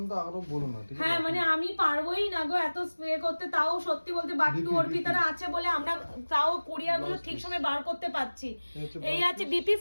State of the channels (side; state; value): both; inverted; correlation -1.00